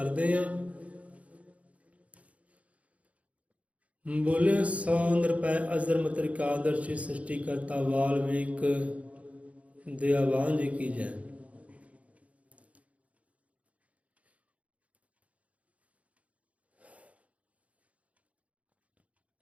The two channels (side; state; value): left; late; 0.066 ms